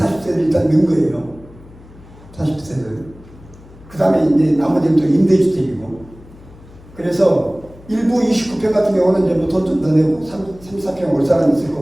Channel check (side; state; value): left; noise; hum, 22 dB below the sound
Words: 일단 넣은 거예요. 40세를. 그 다음에 이제 나머지는 또 임대주택이고. 그래서 일부 29평 같은 경우는 이제 뭐 돈 좀 더 내고 34평 올 사람이 있을